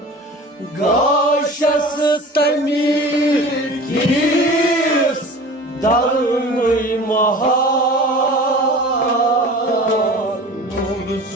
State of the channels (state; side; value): normal; both; correlation 0.39